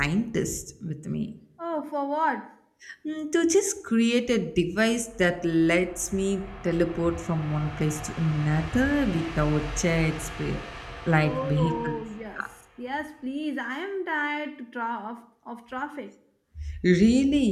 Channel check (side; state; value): both; identical; correlation 1.00